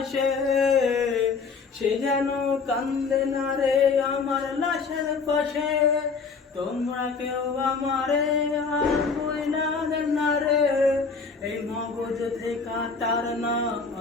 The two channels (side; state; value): right; quieter; 4.9 dB